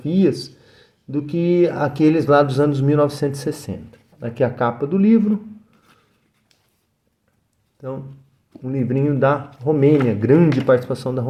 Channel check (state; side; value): identical; both; correlation 1.00